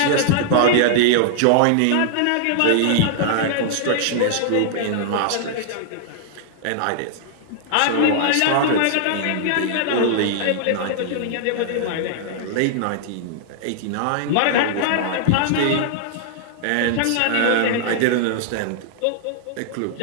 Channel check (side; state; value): both; different; correlation -0.01